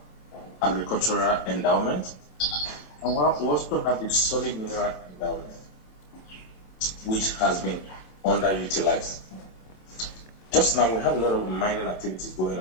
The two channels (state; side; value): late; right; 27 ms